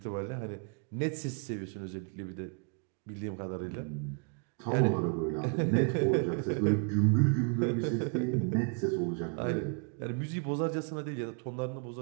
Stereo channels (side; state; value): left; quieter; 39.6 dB